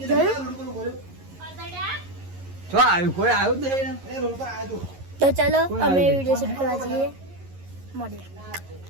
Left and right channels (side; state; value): left; late; 11 ms